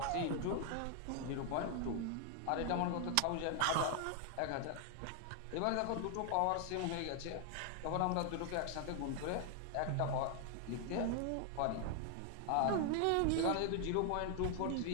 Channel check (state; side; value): different; both; correlation 0.00